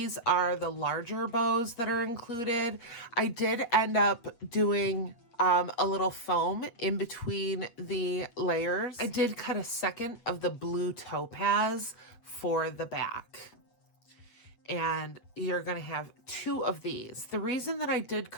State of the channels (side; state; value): right; late; 8.4 ms